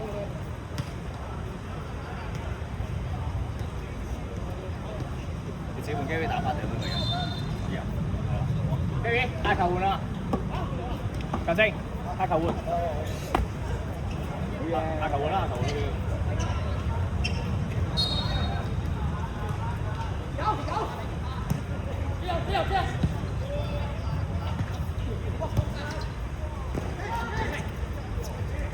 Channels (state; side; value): identical; both; correlation 1.00